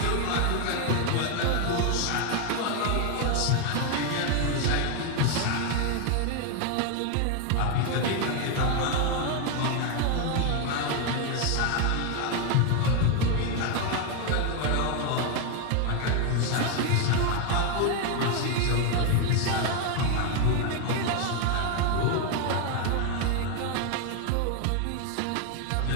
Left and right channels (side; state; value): both; different; correlation 0.01